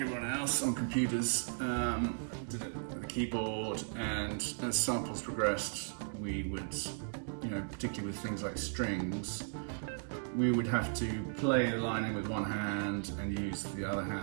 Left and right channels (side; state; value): left; silent; digital silence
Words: else, on computers, did it with a keyboard, and as samples progressed, we would, particularly with things like strings, we would have to play the line in with one hand and use the other